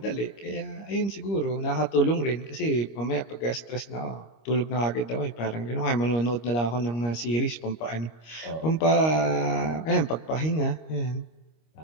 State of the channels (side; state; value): right; late; 25 ms